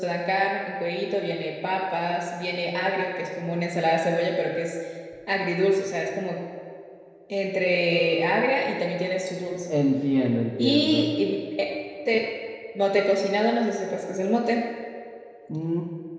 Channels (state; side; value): identical; both; correlation 1.00